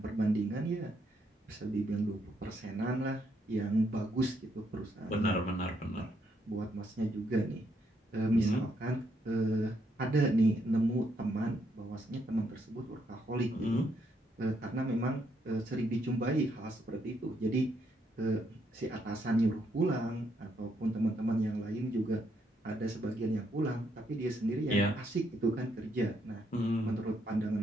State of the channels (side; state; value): both; normal; correlation 0.75